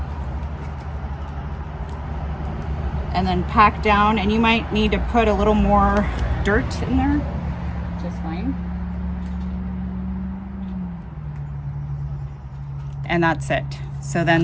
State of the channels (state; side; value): identical; both; correlation 1.00